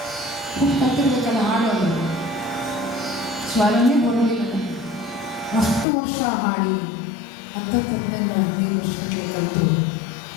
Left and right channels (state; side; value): drops out; right; at 5.9 s